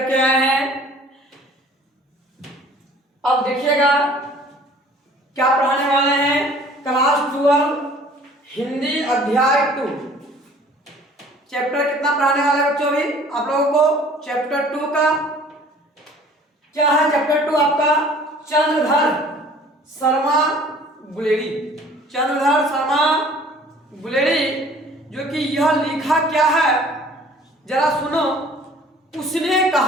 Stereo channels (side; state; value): both; normal; correlation 0.51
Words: के आए हैं। अब देखिएगा क्या पढ़ाने वाले हैं। क्लास 12 हिंदी अध्याय 2 चैप्टर कितना पढ़ाने वाले हैं बच्चों। अभी आप लोगों को चैप्टर 2 का क्या है। चैप्टर 2 आपका चंद्रधर शर्मा गुलेरी। चंद्रधर शर्मा गुलेरी जो कि यह लिखा क्या है जरा सुनो। उसने